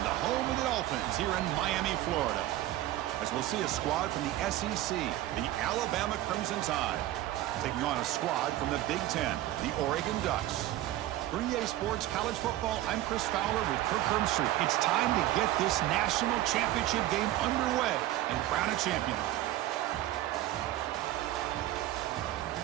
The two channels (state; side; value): quieter; left; 14.8 dB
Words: the home of the Dolphins here in Miami, Florida. As we'll see a squad from the SEC, the Alabama Crimson Tide, taking on a squad from the Big Ten, the Oregon Ducks. For EA Sports College Football, I'm Chris Fowler with Kirk Herbstreit. It's time to get this national championship game underway and crown a champion.